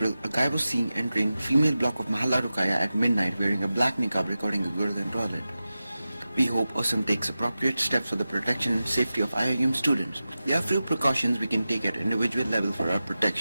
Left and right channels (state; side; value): inverted; both; correlation -0.94